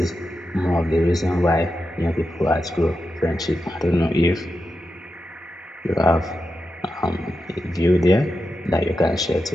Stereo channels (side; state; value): both; normal; correlation 0.89